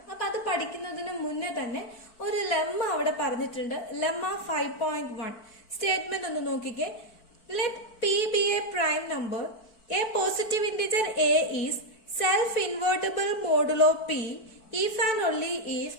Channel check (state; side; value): late; right; 4.5 ms